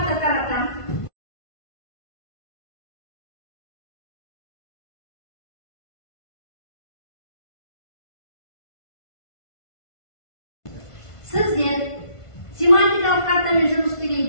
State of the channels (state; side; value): late; right; 1.5 ms